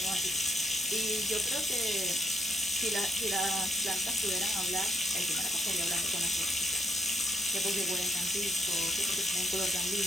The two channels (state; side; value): normal; both; correlation 0.76